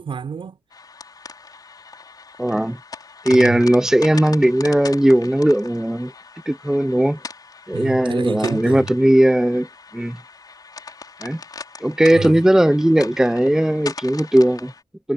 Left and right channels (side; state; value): both; normal; correlation 0.98